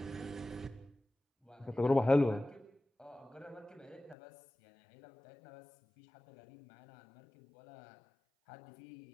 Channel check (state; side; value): drops out; right; at 4.2 s